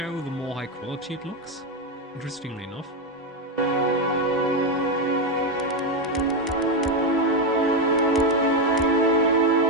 the more high quality it looks, interestingly enough.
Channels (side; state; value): both; normal; correlation 0.07